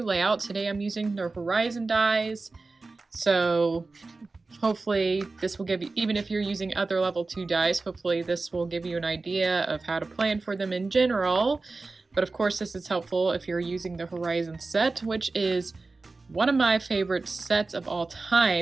layout. Today I'm using the Horizon dies, so hopefully this will give you, even if you're using other level 2 dies, hopefully this will give you an idea of how to plan for them in general. But of course this is helpful if you're using the Horizon set, which is one of my favorite sets of all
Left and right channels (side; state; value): left; quieter; 3.7 dB